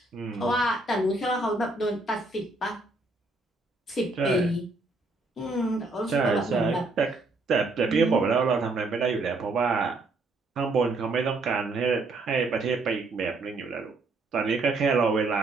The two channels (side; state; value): left; quieter; 3.3 dB